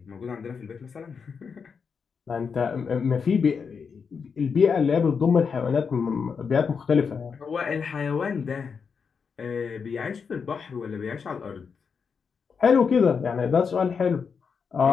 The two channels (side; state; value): right; quieter; 5.9 dB